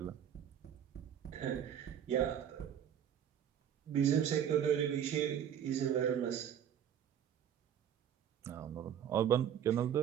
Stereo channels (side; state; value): left; quieter; 9.4 dB